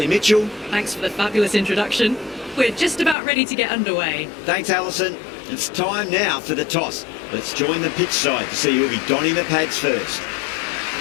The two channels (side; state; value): right; drops out; at 3.2 s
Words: Mitchell. Thanks for the fabulous introduction. We're just about ready to get underway. Thanks, Alison. It's time now for the toss. Let's join the pitch side to see who'll be donning the pads first.